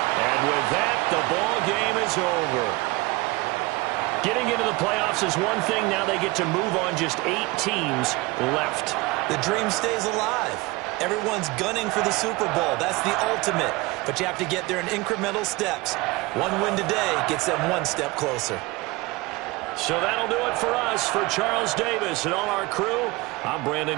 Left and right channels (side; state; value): left; quieter; 22.7 dB